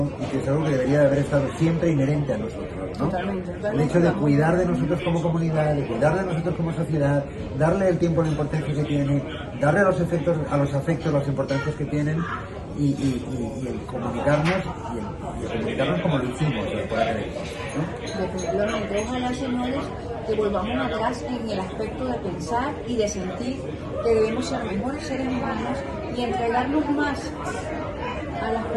y que es algo que debería de haber estado siempre inherente a nosotros, ¿no? Totalmente. El hecho de cuidar de nosotros como comunidad, de cuidar de nosotros como sociedad, darle el tiempo, la importancia que tiene, darle a los afectos las importancias que tienen, y el comunicarnos y el comunicarnos como lo hicimos por aquel entonces, ¿no? Definitivamente, ojalá, señores, que volvamos atrás en el aspecto de pensar y de sentir que debemos ser mejores seres humanos y entregarnos más a las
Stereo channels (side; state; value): both; identical; correlation 1.00